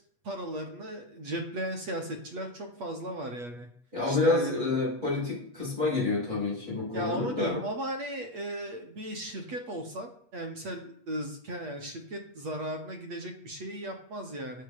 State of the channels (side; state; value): left; late; 8.4 ms